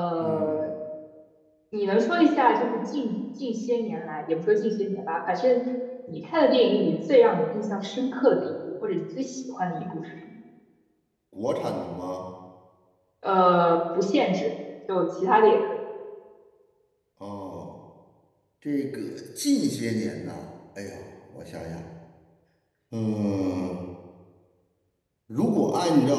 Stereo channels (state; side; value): identical; both; correlation 1.00